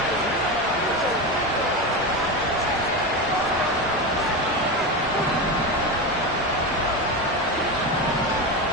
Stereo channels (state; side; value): normal; both; correlation 0.19